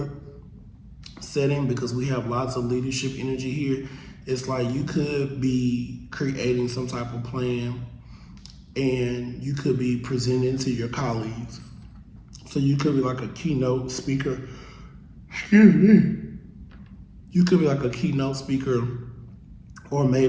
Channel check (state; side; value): identical; both; correlation 1.00